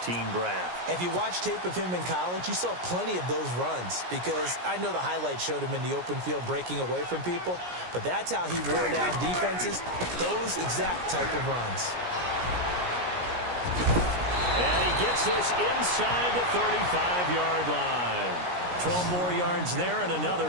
draft. If you watch tape of him in college, you saw plenty of those runs, because I know the highlights showed him in the open field breaking away from people, but that's how he wore down defenses, those exact type of runs. And he gets this inside the 35-yard line. 12 more yards there and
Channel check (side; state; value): left; late; 17 ms